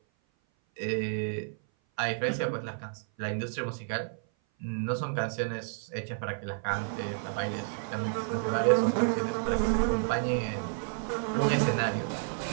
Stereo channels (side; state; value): left; silent; 56 dB below the other